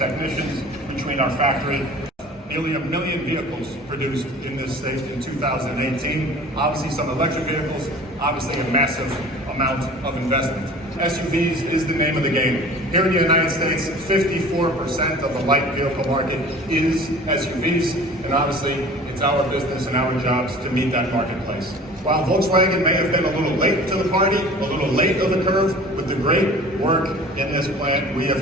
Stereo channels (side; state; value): both; normal; correlation 0.44